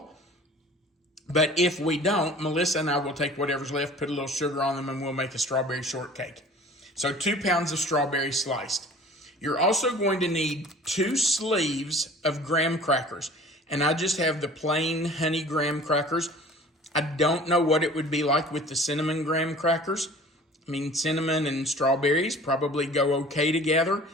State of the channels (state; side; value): normal; both; correlation 0.46